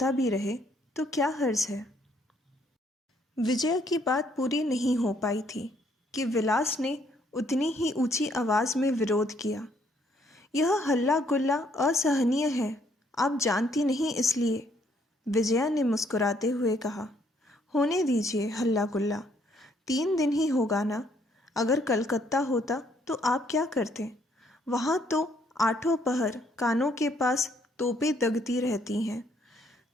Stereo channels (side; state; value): both; normal; correlation 0.67